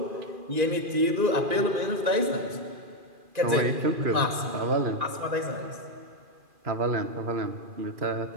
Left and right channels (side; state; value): left; late; 2.4 ms